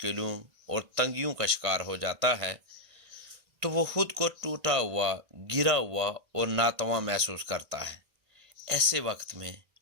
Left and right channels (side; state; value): left; late; 1.5 ms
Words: اور تنگیوں کا شکار ہو جاتا ہے تو وہ خود کو ٹوٹا ہوا، گرا ہوا اور ناتواں محسوس کرتا ہے۔ ایسے وقت میں